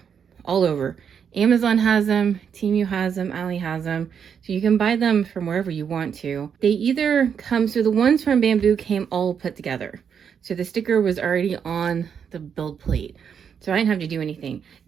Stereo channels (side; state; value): left; quieter; 7.4 dB